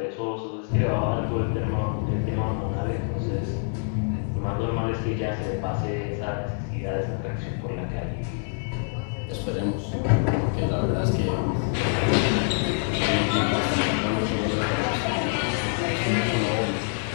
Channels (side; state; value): right; silent; 61 dB below the other